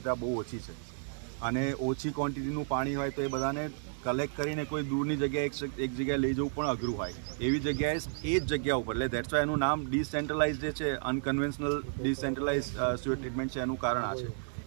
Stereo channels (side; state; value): left; silent; digital silence